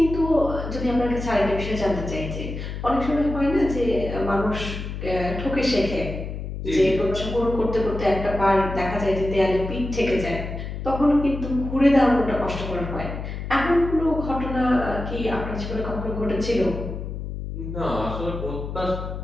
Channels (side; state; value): left; noise; hum, 7 dB below the sound